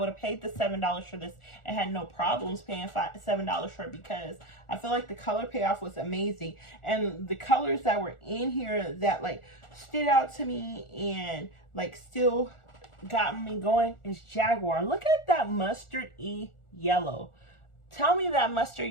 have paid the $7 for this and had no problems paying $7 for it, because I feel like the color payoff was amazing. And the colors that were in here that, like, stood out to me and, like, still got me going is Jaguar. Look at that mustard-y yellow. Tell me that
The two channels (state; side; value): late; right; 1.4 ms